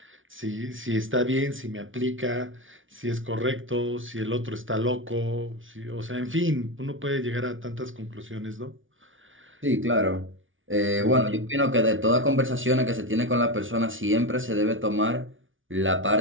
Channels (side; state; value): left; late; 0.57 ms